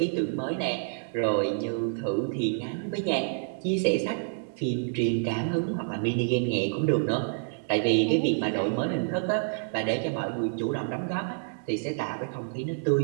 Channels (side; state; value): left; silent; digital silence